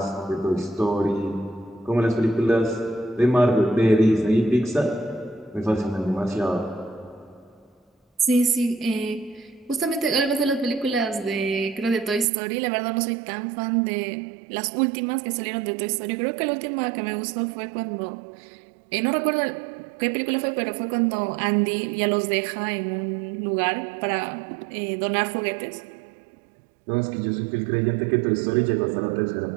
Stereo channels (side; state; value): left; drops out; at 12.2 s